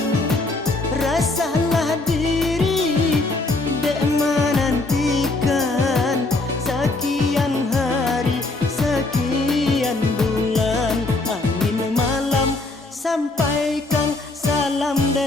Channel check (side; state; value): right; quieter; 3.1 dB